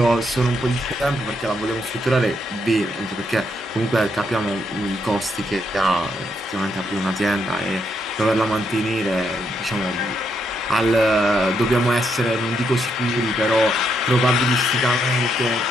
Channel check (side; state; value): both; normal; correlation 0.77